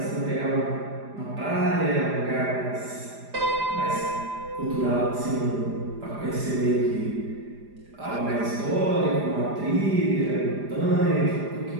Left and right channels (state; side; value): late; left; 4.9 ms